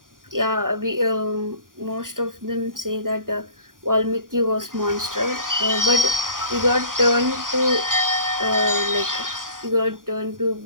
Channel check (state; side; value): late; left; 0.90 ms